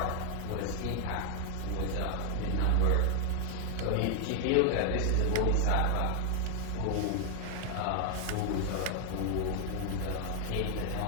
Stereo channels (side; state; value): both; different; correlation 0.00